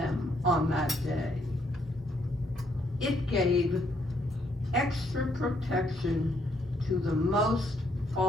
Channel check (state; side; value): normal; both; correlation 0.71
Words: on that day. It gave extra protection to the most